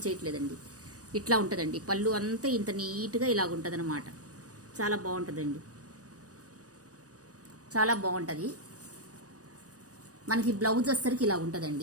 చేయట్లేదండి. ఇట్లా ఉంటుందండి పళ్ళు అంతా ఇంత నీట్గా ఇలాగ ఉంటుంది అనమాట. చాలా బాగుంటుందండి, చాలా బాగుంటుంది. మనకి బ్లౌజ్ వచ్చేసరికి ఇలా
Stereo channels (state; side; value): late; left; 0.67 ms